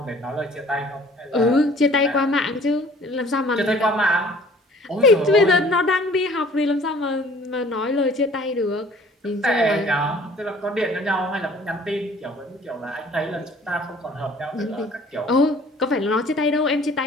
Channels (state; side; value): normal; both; correlation 0.53